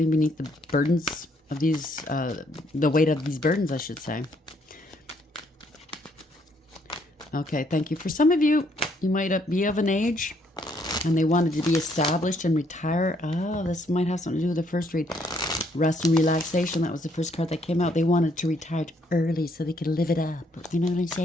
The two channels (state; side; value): normal; both; correlation 0.69